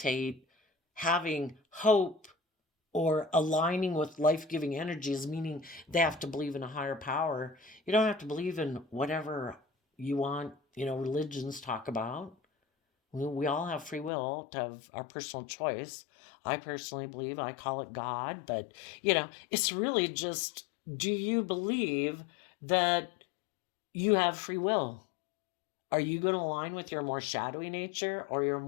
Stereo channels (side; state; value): right; drops out; at 14.1 s